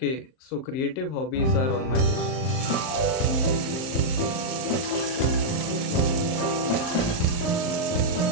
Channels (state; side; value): late; right; 38 ms